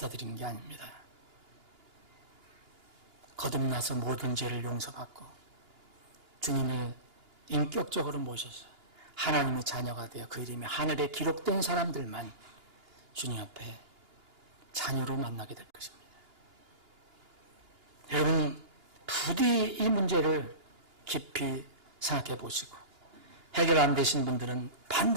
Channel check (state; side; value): late; left; 2.9 ms